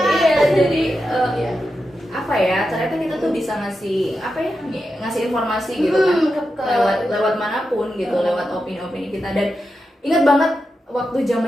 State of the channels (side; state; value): both; normal; correlation 0.89